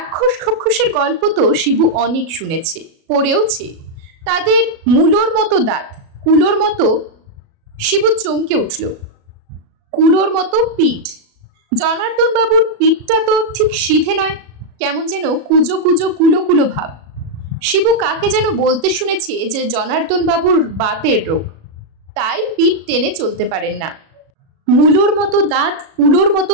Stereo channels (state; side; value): late; left; 37 ms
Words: খক্ষসের গল্প তো শিবু অনেক শুনেছে, পড়েওছে। তাদের মূলোর মতো দাঁত, কুলোর মতো। শিবু চমকে উঠল। কুলোর মতো পিঠ। জনার্দন বাবুর পিঠটা তো ঠিক সিধে নয়, কেমন যেন কুজো কুজো কুলো কুলো ভাব। শিবু কাকে যেন বলতে শুনেছে যে জনার্দন বাবুর বাতের রোগ, তাই পিঠ টেনে চলতে পারেন না। মূলোর মতো দাঁত, কুলোর